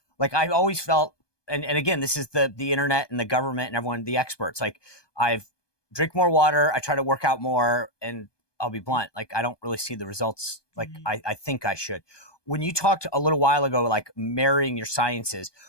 Like I always felt, and again, this is the internet and the government and everyone, the experts, like I've drink more water, I try to work out more, and I'll be blunt, like I don't really see the results like I think I should. When you talked a little while ago, like marrying your sciences,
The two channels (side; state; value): right; late; 1.2 ms